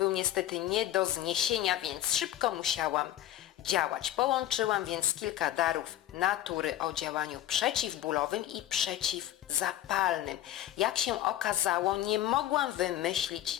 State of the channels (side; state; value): right; quieter; 12.9 dB